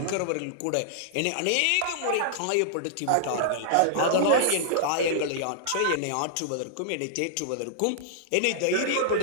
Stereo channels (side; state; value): both; different; correlation -0.01